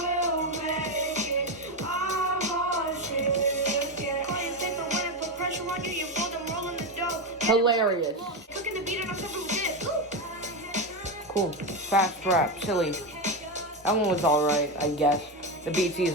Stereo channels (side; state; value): both; normal; correlation 0.12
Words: make it. I want it. Yeah. Call you take the win and put pressure on you. You fold them rolling the dough. Hilarious. Cooking the beat and I'm serving this. Cool. Fast rap. Silly. That one was alright, I guess. The beat's